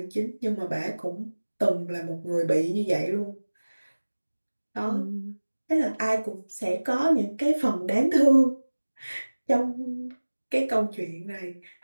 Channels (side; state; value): both; inverted; correlation -1.00